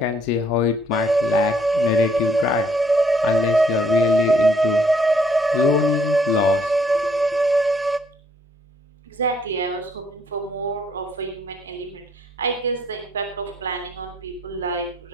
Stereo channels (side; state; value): both; normal; correlation 0.66